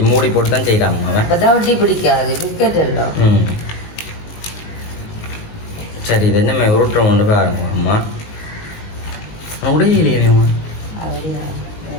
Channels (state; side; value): late; right; 19 ms